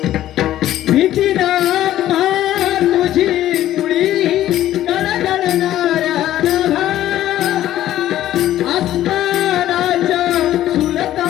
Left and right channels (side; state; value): right; quieter; 13.2 dB